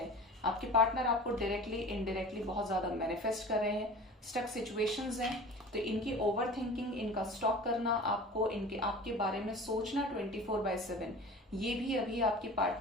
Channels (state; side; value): normal; both; correlation 0.39